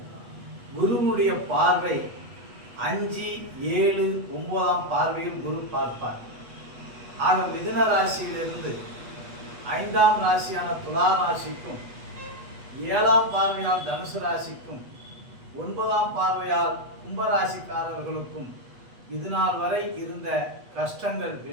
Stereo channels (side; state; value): left; late; 8.2 ms